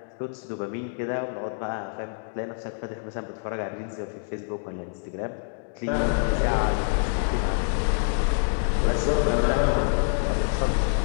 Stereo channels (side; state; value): right; silent; digital silence